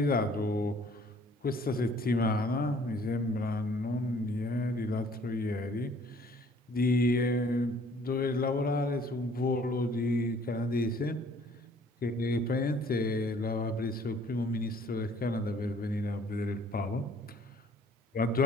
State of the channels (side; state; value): both; normal; correlation 0.57